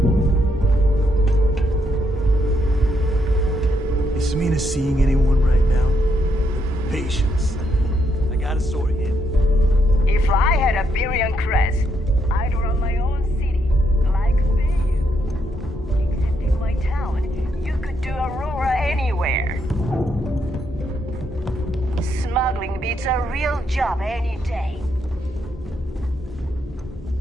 Is Samina seeing anyone right now? Patience. I got a sword here. If I had a Birion crest, I'd run my own city, like Bayou. Except in my town, you could do Aurora anywhere. Smuggling beats a real job any day.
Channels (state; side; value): normal; both; correlation 0.77